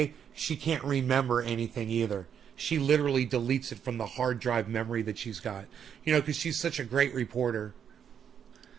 she can't remember anything either. She literally deletes it from the hard drive memory that she's got. You know, because she's such a great reporter.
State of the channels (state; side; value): quieter; left; 8.2 dB